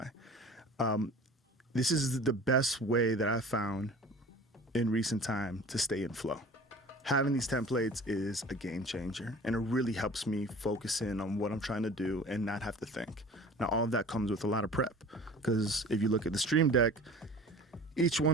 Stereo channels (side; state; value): both; normal; correlation 0.42